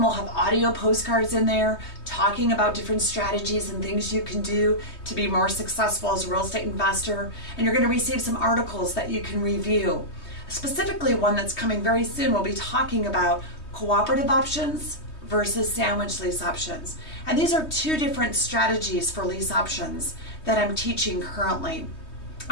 will have audio postcards in there talking about different strategies and things you can do to be more successful as a real estate investor. And you're going to receive some articles that you can review. Specifically, one that's coming very soon will be talking about cooperative options versus sandwich lease options. And these are two different strategies for lease options that I'm teaching currently.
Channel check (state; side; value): late; right; 3.2 ms